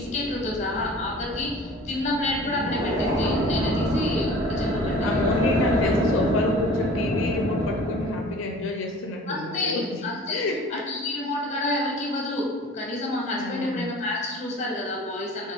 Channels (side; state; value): both; normal; correlation 0.44